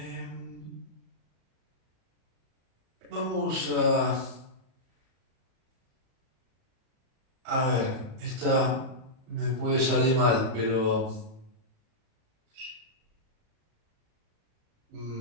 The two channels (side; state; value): left; late; 37 ms